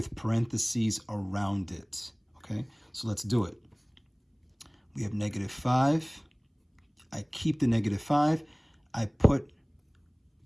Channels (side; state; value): both; identical; correlation 1.00